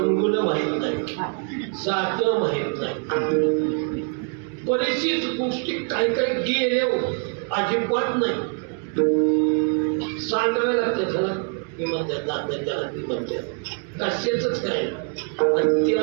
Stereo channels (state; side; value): quieter; left; 38.5 dB